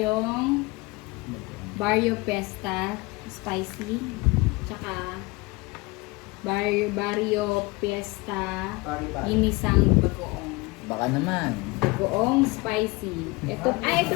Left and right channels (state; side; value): quieter; right; 24.0 dB